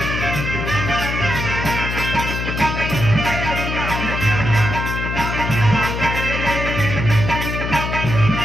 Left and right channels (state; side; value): noise; left; hum, 3 dB below the sound